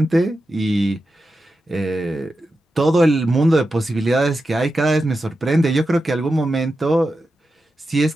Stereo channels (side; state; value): both; normal; correlation 0.90